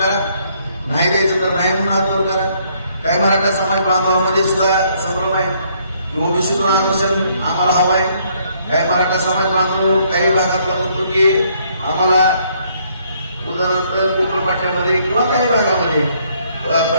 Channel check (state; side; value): inverted; both; correlation -0.68